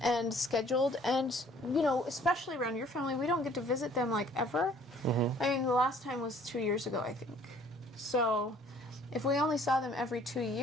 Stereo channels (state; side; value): normal; both; correlation 0.56